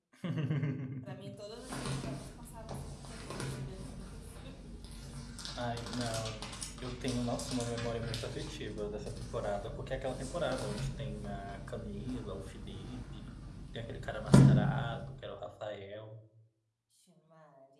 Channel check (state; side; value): identical; both; correlation 1.00